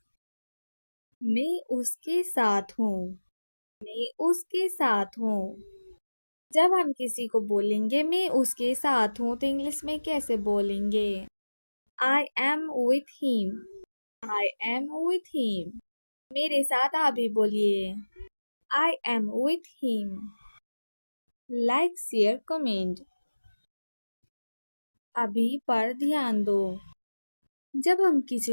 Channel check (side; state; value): both; inverted; correlation -1.00